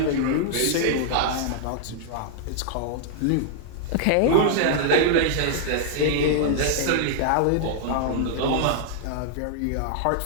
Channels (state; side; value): different; both; correlation -0.01